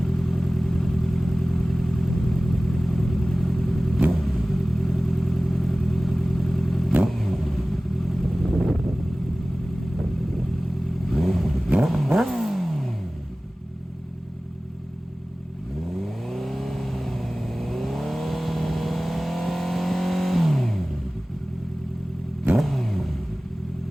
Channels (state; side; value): normal; both; correlation 0.98